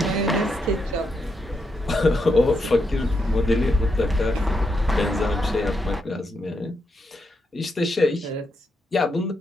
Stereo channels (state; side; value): normal; both; correlation 0.82